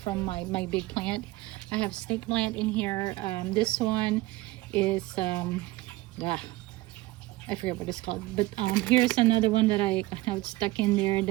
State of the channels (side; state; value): left; quieter; 19.1 dB